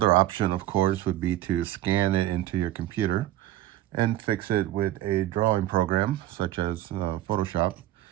option, of course, would be to scan it into your computer and fix it with a drawing program such as Photoshop,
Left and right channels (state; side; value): quieter; left; 14.5 dB